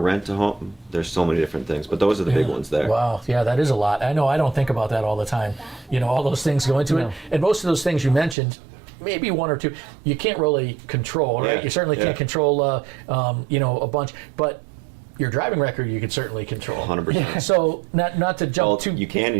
a home. There's so many different things, but those are the big ones there. Wow, yeah, that is a lot. I know I don't think about that all the time. All those things go into it. And most of those things you mentioned, maybe one or two, you can't really control, right? Yeah, You certainly can't control, a bunch, but your driving record you could certainly control. 100%. So not to jump too. You can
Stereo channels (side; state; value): left; drops out; at 8.3 s